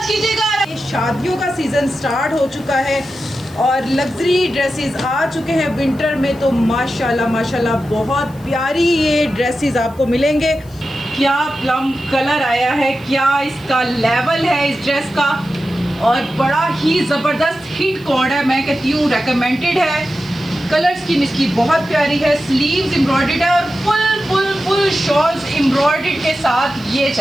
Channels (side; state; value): right; noise; hiss, 27 dB below the sound